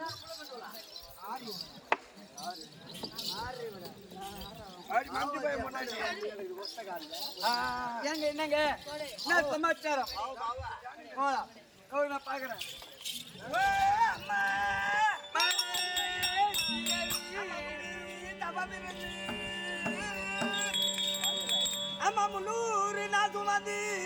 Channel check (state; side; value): identical; both; correlation 1.00